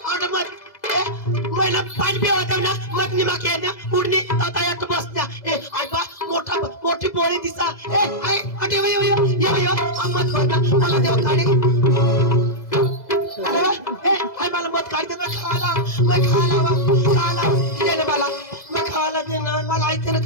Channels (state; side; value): late; right; 2.0 ms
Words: मग महिला पाणी पिवत ना मग निमा ना उडणी आता यात बसत्या आयबा मोठी पोळी दिसा आय अटे यो मत मला देव काढे आय मला मत काढते मैं खाला देने मैं खाला देना मला आयते ना